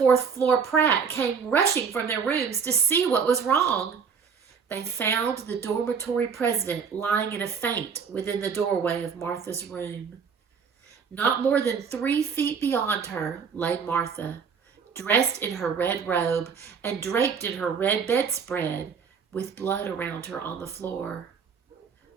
floor Pratt came rushing from their rooms to see what was wrong. They found the dormitory president lying in a faint within the doorway of Martha's room. Not more than 3 feet beyond her lay Martha, dressed in her red robe and draped in her red bedspread, with blood around her on the floor.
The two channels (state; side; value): quieter; left; 6.2 dB